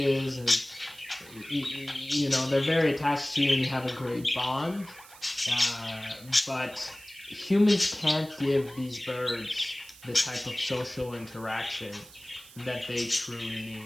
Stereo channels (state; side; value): noise; right; hiss, 20 dB below the sound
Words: and they're very attached to you, and you have a great bond. But humans can't give these birds the type of social interaction that they truly